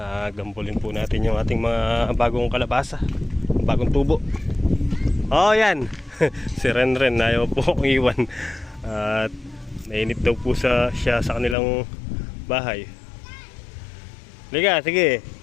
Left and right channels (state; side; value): drops out; right; at 11.6 s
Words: gambulin po natin yung ating mga bagong kalabasa. Bagong tubo. Oh, yan. Si Renren, ayaw po akong iwan. At mainit daw po siya sa kanilang bahay. Liga, sige.